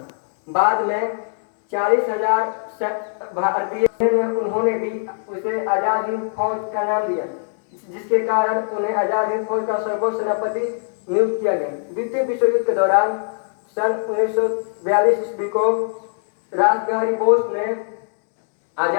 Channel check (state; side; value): silent; right; digital silence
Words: बाद में 40,000 भारतीय उन्होंने भी उसे आज़ाद हिंद फौज का नाम दिया, जिसके कारण उन्हें आज़ाद हिंद फौज का सर्वोच्च सेनापति नियुक्त किया गया। द्वितीय विश्व युद्ध के दौरान सन 1942 ईस्वी को रास बिहारी बोस ने